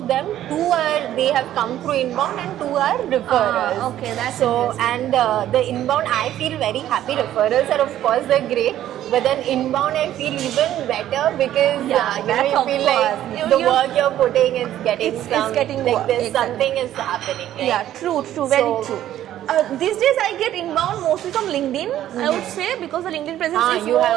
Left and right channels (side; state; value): left; quieter; 12.3 dB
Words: them, 2 they have come through inbound and 2 are referrals. Okay, that's so interesting. and the inbound I feel very happy. Referrals are of course they're great, but then inbound I feel even better because Yeah, you that's you of feel course. like the work you're putting is getting It's some getting like work, this exactly. something is happening. Right? Yeah, true, very So- true. These days I get inbound mostly from LinkedIn, I would say, because the LinkedIn presence is you more